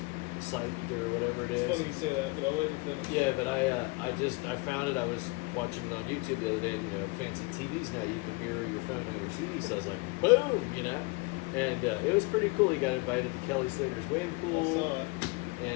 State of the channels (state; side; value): quieter; right; 26.7 dB